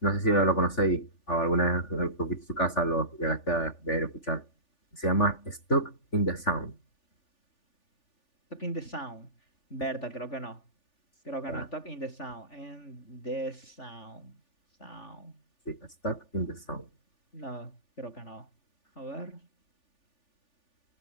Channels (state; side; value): late; right; 3.4 ms